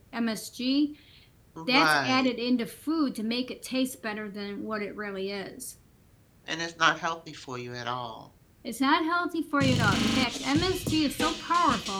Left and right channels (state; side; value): identical; both; correlation 1.00